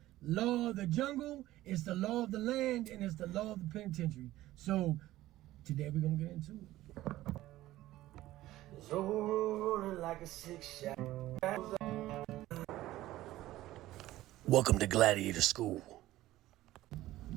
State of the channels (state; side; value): quieter; left; 15.7 dB